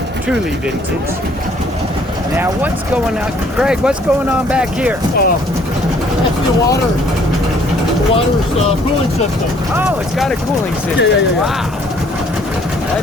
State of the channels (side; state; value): both; normal; correlation 0.61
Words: truly vintage. Now what's going on? Craig, what's going on back here? That's the water's cooling system. Oh, it's got a cooling system. Yeah. Wow.